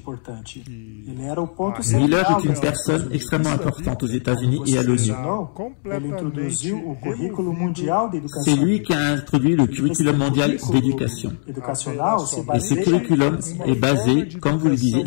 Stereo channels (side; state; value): right; silent; digital silence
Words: Miller est une personne extrêmement importante aux États-Unis et à l'ONU. C'est lui qui a introduit le curriculum mondial d'éducation. Et ce curriculum est basé, comme vous le disiez,